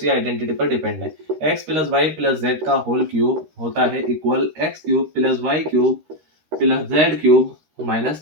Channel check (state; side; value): late; left; 13 ms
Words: आइडेंटिटी पर डिपेंड है। x plus Y plus Z का होल क्यूब होता है equal x³ plus y³ plus z³ minus